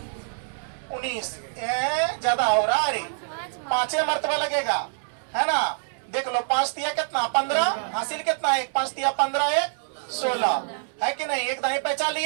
19। ज्यादा हो रहा है, 5 मरतबा लगेगा है ना। देख लो 5 तिया कितना 15 हासिल कितना 1, 5 तिया 15 1 16 है कि नहीं? एक दाई पहचान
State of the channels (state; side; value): silent; left; digital silence